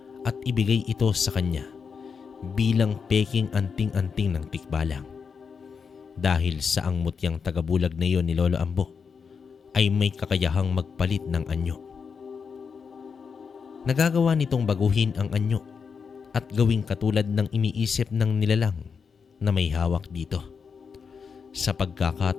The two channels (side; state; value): right; quieter; 5.9 dB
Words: at ibigay ito sa kanya bilang peking anting-anting ng tikbalang. Dahil sa ang mutyang tagabulag na iyon ni Lolo Ambo ay may kakayahang magpalit ng anyo. Nagagawa nitong baguhin ang anyo at gawing katulad ng iniisip ng nilalang na may hawak dito. Sa